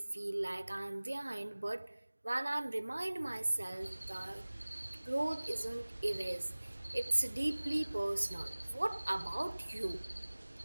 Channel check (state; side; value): inverted; both; correlation -1.00